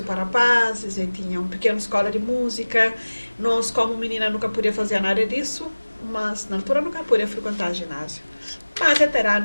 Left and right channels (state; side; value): inverted; both; correlation -1.00